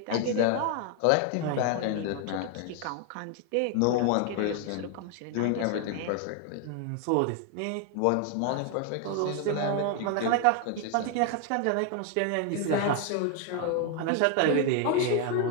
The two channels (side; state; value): both; different; correlation 0.00